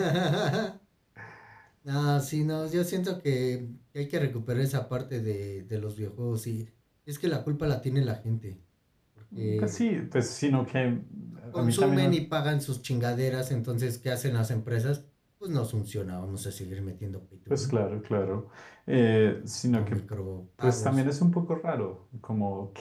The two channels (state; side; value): identical; both; correlation 1.00